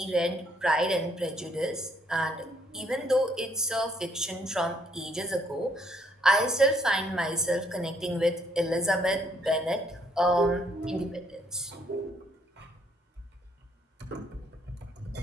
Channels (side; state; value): both; normal; correlation 0.68